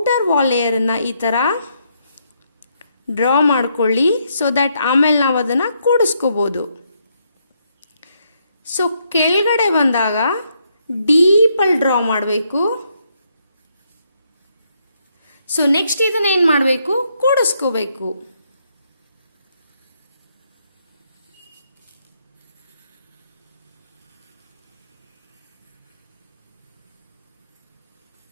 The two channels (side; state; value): both; inverted; correlation -0.75